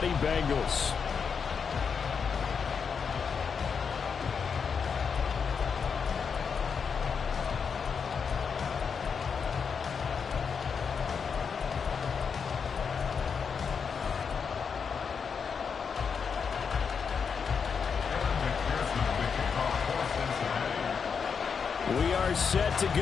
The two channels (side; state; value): right; quieter; 6.2 dB